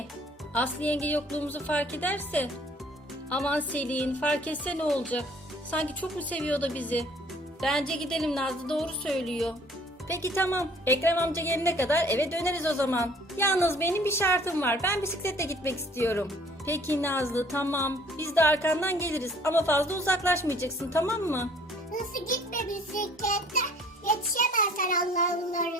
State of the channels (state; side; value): normal; both; correlation 0.55